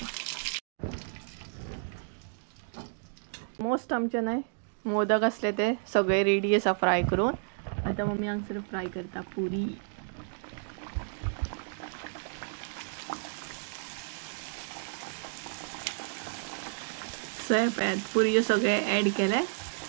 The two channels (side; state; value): left; silent; digital silence